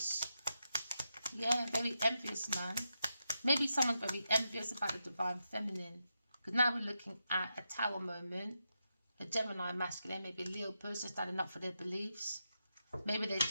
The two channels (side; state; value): both; inverted; correlation -0.86